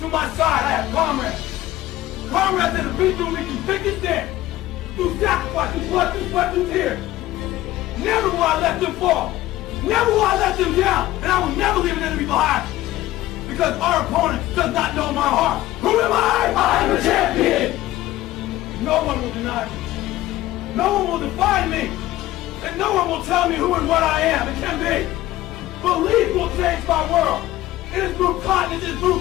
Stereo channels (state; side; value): quieter; right; 15.7 dB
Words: To my side, I have comrades. Comrades that have been through me through thick and thin, through sacrifice, through blood, through sweat, through tears. Never will I let them fall. Never will I let them down. And I will never leave an enemy behind. Because our opponent does not know my heart. Who am I? I am a champion! No one will deny me. No one will define me. And no one will tell me who and what I am. It can be. Belief will change my world. It has moved continents, it has